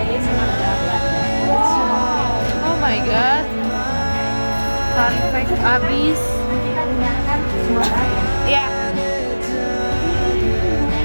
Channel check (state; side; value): inverted; both; correlation -1.00